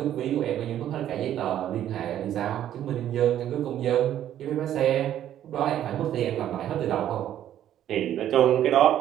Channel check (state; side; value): quieter; left; 11.3 dB